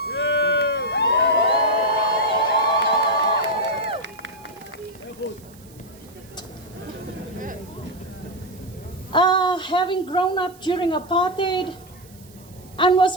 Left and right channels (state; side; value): noise; right; hiss, 25 dB below the sound